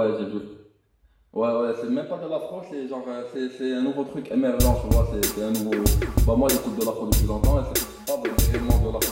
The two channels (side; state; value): both; identical; correlation 1.00